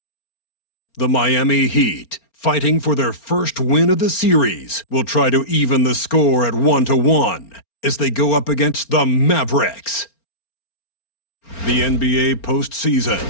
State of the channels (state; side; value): late; right; 4.4 ms